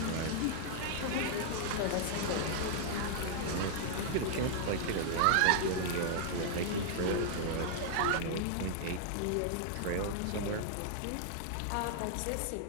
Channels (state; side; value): different; both; correlation -0.01